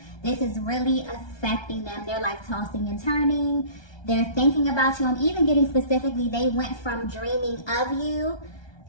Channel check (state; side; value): late; right; 1.2 ms